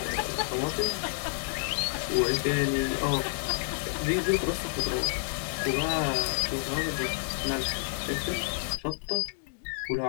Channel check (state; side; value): silent; right; digital silence